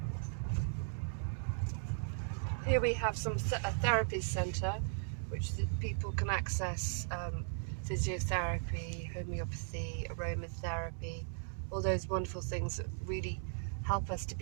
Here we have a therapy centre, which people can access physiotherapy, homeopathy, aromatherapy, all those wonderful things that really help us to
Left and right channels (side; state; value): left; silent; digital silence